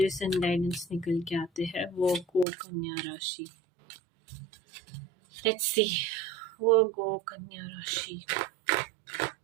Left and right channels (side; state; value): left; drops out; at 2.5 s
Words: एंड गाइडेंस निकल के आते हैं वर्गो कन्या राशि। लेट्स सी वर्गो कन्या राशि।